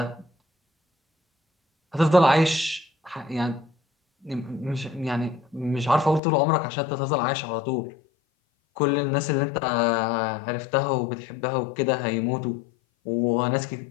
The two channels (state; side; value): drops out; right; at 6.2 s